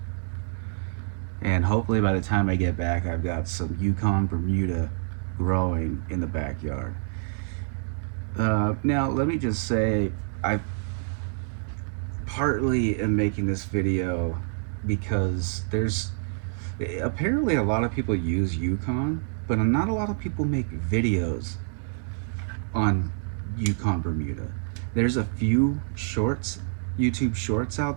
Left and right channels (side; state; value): left; silent; 60 dB below the other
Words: and hopefully by the time I get back I've got some Yukon Bermuda growing in the backyard. Now let me just say, I partly am making this video because there's apparently a lot of people use Yukon, but not a lot of people make videos on Yukon Bermuda. There's a few shorts, YouTube shorts